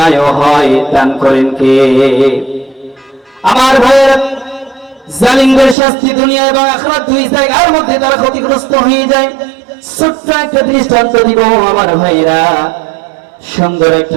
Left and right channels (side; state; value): left; drops out; at 5.8 s